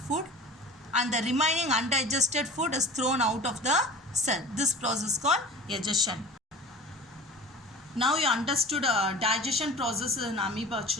and the remaining undigested food is thrown out of the cell. This process is called egestion. Now you understood digestion process in amoeba,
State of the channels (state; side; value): normal; both; correlation 0.38